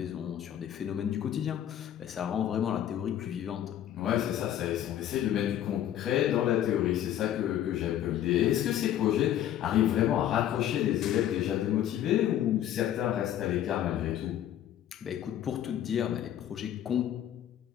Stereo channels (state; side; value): quieter; right; 11.2 dB